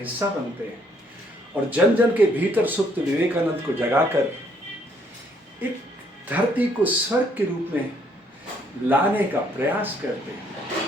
बनते हैं और जन जन के भीतर सुप्त विवेकानंद को जगाकर एक धरती को स्वर्ग के रूप में लाने का प्रयास करते हैं।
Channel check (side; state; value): both; normal; correlation 0.67